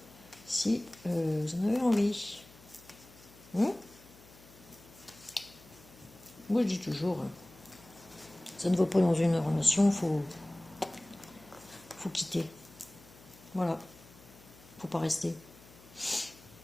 si vous en avez envie. Moi je dis toujours, ça ne va pas dans une relation, faut quitter. Voilà, faut pas rester.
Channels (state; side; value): noise; left; hum, 23 dB below the sound